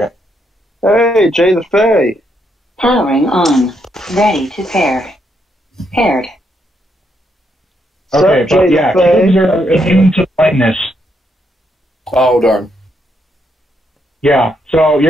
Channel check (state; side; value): normal; both; correlation 0.77